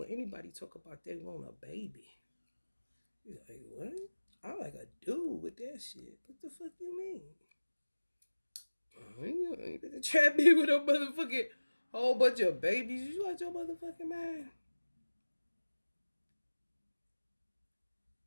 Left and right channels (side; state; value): both; inverted; correlation -1.00